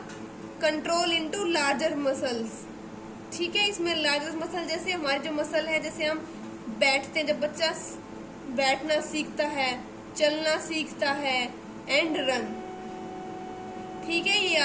कंट्रोल इनटू लार्जर मसल्स, ठीक है। इसमें लार्जर मसल जैसे हमारी जो मसल है, जैसे हम बैठते हैं, जब बच्चा बैठना सीखता है, चलना सीखता है, एंड रन, ठीक है, ये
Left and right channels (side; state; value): both; identical; correlation 1.00